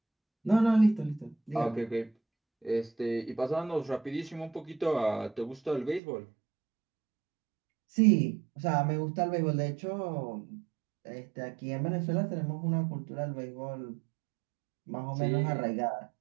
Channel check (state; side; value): drops out; left; at 6.0 s